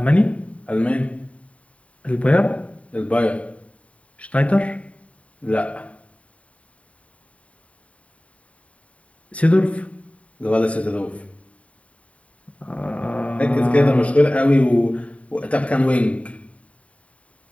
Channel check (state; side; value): late; right; 0.066 ms